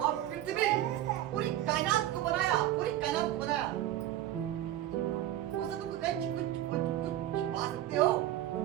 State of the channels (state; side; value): quieter; left; 13.2 dB